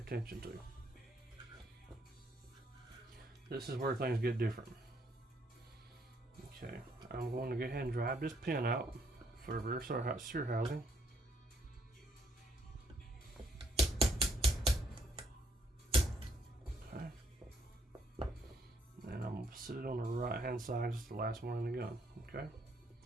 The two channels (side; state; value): both; normal; correlation 0.70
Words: to. This is where things get different. Okay, I'm going to go ahead and drive this pin out for the rear sear housing. Okay, and I'm going to sit it on the right hand side, just the last one in the gun. Okay,